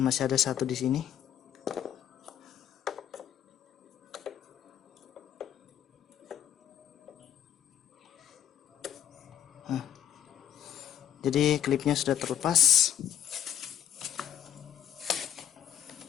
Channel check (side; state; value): right; quieter; 10.2 dB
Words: ada satu di sini. Jadi klipnya sudah terlepas.